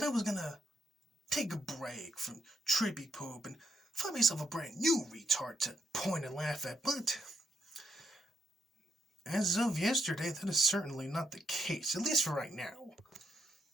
I was going to take a break from Troopy Poop and find myself a brand new retard to point and laugh at, but as of yesterday, that is certainly not the case, at least for right now.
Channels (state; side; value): normal; both; correlation 0.77